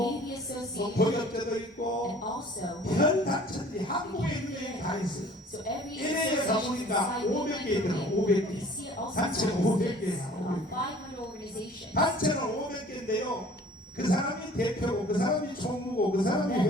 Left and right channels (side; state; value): both; normal; correlation 0.50